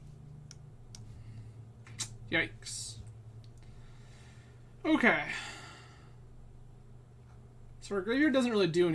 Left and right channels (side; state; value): both; identical; correlation 1.00